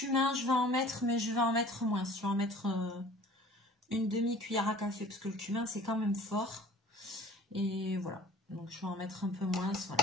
je vais en mettre, mais je vais en mettre moins. Je vais en mettre une demi-cuillère à café, parce que le cumin, c'est quand même fort. Et voilà. Donc, je vais en mettre un peu moins.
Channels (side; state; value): both; normal; correlation 0.47